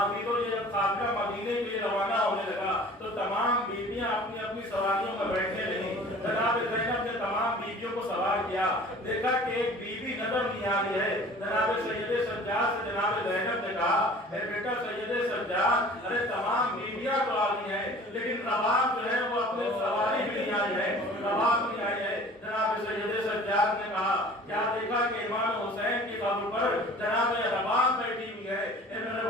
یہ قافلہ مدینے کے لیے روانہ ہونے لگا تو تمام بیویاں اپنی اپنی سواریوں میں بیٹھنے لگیں. جناب زینب نے تمام بیویوں کو سوار کیا. دیکھا کہ ایک بیوی نظر نہیں آ رہی ہے. جناب سید سجاد سے جناب زینب نے کہا اے بیٹا سید سجاد, ارے تمام بیویاں تو آ رہی ہیں لیکن رباب جو ہے وہ اپنے سواری بھی نہیں آئی ہے, رباب نہیں آئی ہے. جناب سید سجاد نے کہا کیا دیکھا کہ امام حسین کی قبر پر جناب رباب بیٹھی ہوئی ہے, اے میرے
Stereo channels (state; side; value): normal; both; correlation 0.46